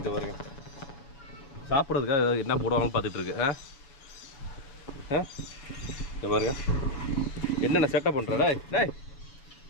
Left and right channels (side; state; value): right; late; 7.1 ms